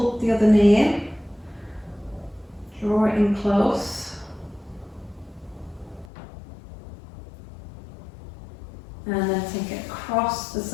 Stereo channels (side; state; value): right; drops out; at 6.1 s